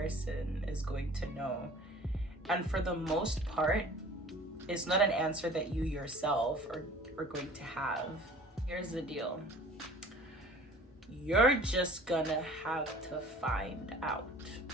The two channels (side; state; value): both; normal; correlation 0.47